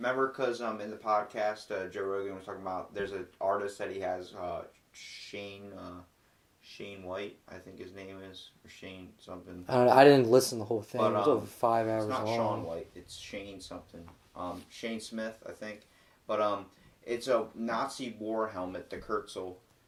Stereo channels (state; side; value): identical; both; correlation 1.00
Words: because in the podcast, Joe Rogan was talking about, there's an artist that he has, Shane White, I think his name is, or Shane something. I didn't listen to the whole thing. But, it was over 5 hours long. It's not Sean White, it's Shane something. Shane Smith, I think. But it's a Nazi war helmet, the Kurtzel,